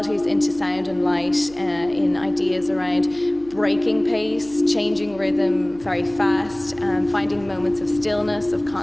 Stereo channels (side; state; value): right; noise; hum, 21 dB below the sound